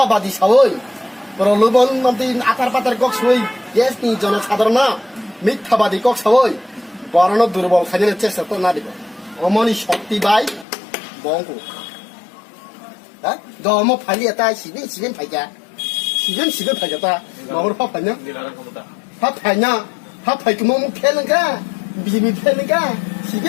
সবই প্রলোভন মন্ত্রী আকার পাতার কক সই ইয়েস নি জনসাধারণ মিথ্যাবাদী কক সবই বরণ দুর্বল খাইনের চেষ্টা তো না দিব অমনি শক্তি বাই বঙ্কু হ্যাঁ দম ফাইলি এটা সিবেন ফাইকা সিবেন ফাইকা তা মাহর ফা ফাইনা নিলার ক্ষমতা ফা ফাইনা ফা ফাইকে মো ফেলঙ্কা বিবি ফেলঙ্কা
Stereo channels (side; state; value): right; drops out; at 10.7 s